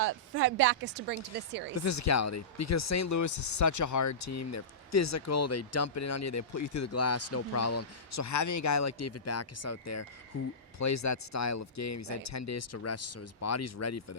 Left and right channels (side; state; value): both; normal; correlation -0.19